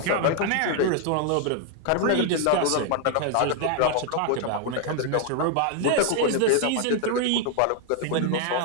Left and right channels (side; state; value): both; different; correlation 0.00